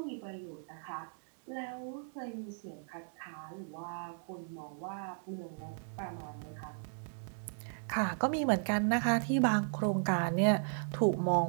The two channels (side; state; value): left; silent; digital silence